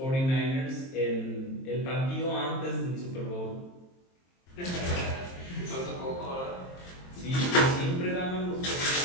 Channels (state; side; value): late; right; 23 ms